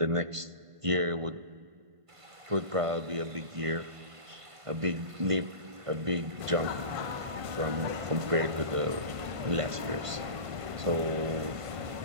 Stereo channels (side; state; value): left; late; 1.5 ms